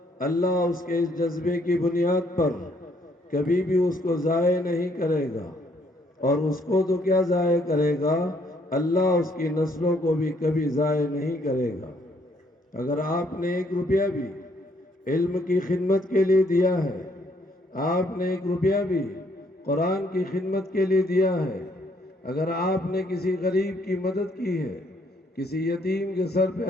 اللہ اس کے اس جذبے کی بنیاد پر کبھی بھی اس کو ضائع نہیں کرے گا. اور اس کو تو کیا ضائع کرے گا، اللہ اس کی نسلوں کو بھی کبھی ضائع نہیں کرے گا. اگر آپ نے 1 روپیہ بھی علم کی خدمت کے لیے دیا ہے، آپ نے 1 روپیہ بھی قرآن کی خدمت کے لیے دیا ہے، اگر آپ نے کسی غریب کی مدد کی ہے، کسی یتیم کے سر پہ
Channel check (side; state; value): both; normal; correlation 0.68